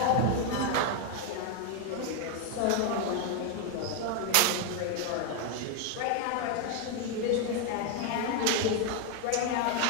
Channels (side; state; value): both; different; correlation 0.01